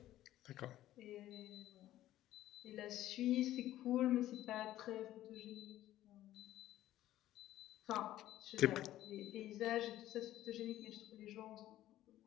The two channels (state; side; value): quieter; right; 13.8 dB